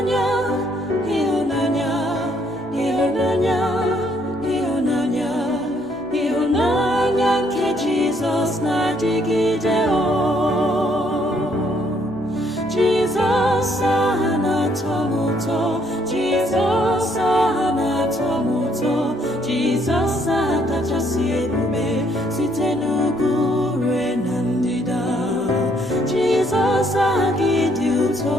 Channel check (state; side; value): normal; both; correlation 0.68